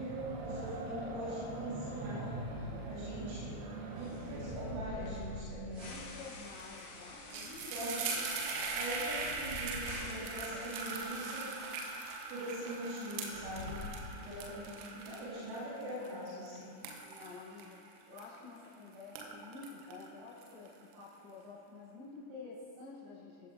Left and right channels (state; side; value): late; left; 40 ms